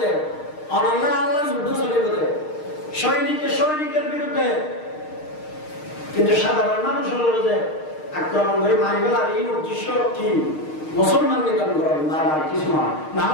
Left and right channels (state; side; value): late; right; 6.5 ms